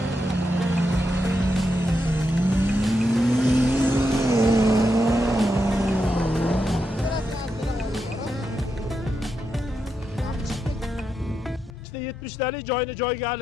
İşte 70 talik joyini joyiga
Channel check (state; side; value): normal; both; correlation 0.84